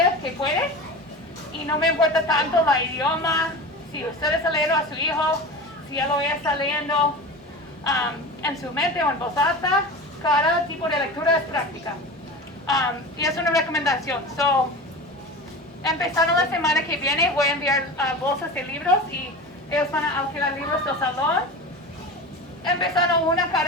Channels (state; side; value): normal; both; correlation 0.30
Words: que puede. Y no me importa tanto la idioma, si usted está leyendo a su hijo, si él o ella está leyendo en su mente o en voz alta, cada tipo de lectura es práctica. Y es una recomendación. So, empezando la semana que viene voy a enviar bolsas de libros y ellos van a alquilar libros del salón. Empezando una